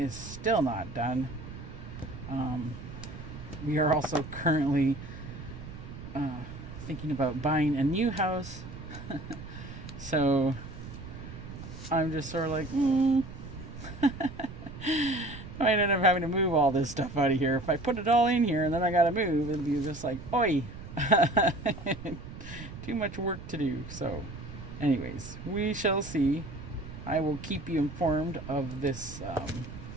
still not done. We are also currently thinking about buying a new house. So I'm just sort of like, I might end up having to move all this stuff out of here. If I put it all in here and then I gotta move, it'll be just like, oi. Too much work to do. So anyways, we shall see. I will keep you informed of this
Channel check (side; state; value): right; noise; rumble, 12 dB below the sound